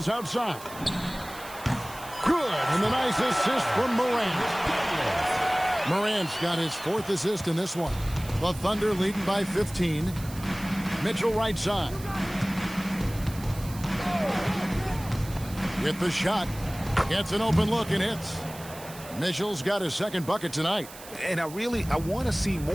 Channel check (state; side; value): noise; right; hiss, 16 dB below the sound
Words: outside. Good, and the nice assist from Morant. Morant's got his 4th assist in this one. The Thunder leading by 15. Mitchell right side. With the shot. Gets an open look and hits. Mitchell's got his 2nd bucket tonight. And I want to see